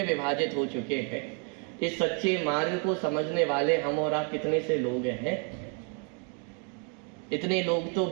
विभाजित हो चुके हैं। इस सच्चे मार्ग को समझने वाले हम और आप कितने से लोग हैं? इतने लोग तो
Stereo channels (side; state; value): left; quieter; 39.3 dB